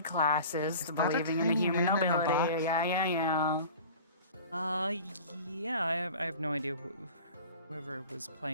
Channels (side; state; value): both; inverted; correlation -0.41